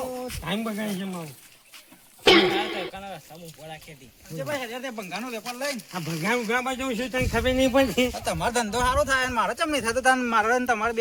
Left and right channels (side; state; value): both; identical; correlation 1.00